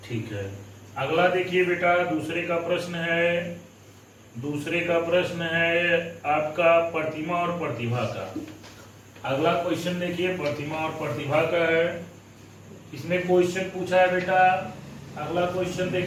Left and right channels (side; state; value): both; identical; correlation 1.00